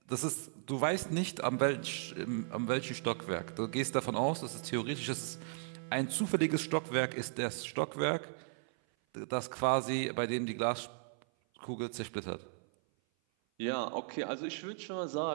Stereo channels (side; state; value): left; silent; 54 dB below the other